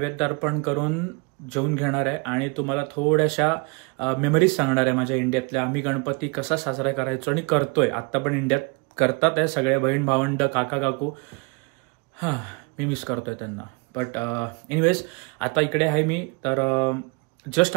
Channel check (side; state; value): left; quieter; 31.4 dB